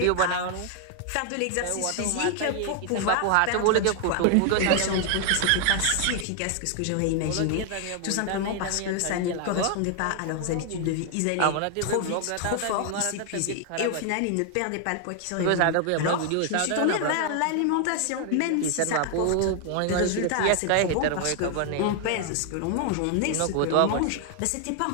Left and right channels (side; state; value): both; different; correlation 0.00